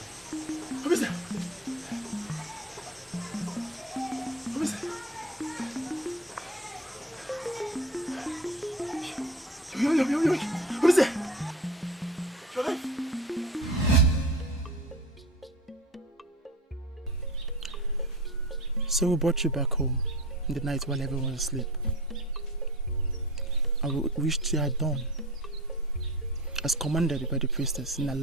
Who is that? Who is that? Yo. Who is that? Drive! So we brought you back home in the night while everyone was asleep. I wished you had done as commanded by the priestess in the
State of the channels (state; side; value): normal; both; correlation 0.34